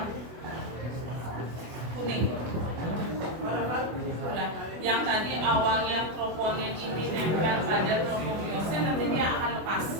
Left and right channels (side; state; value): left; late; 24 ms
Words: kuning. Nah, yang tadi awalnya troponin ini nempel pada tropomyosin, nanti dia akan lepas.